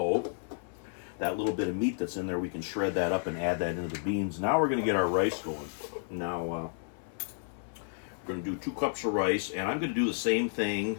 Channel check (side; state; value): right; silent; digital silence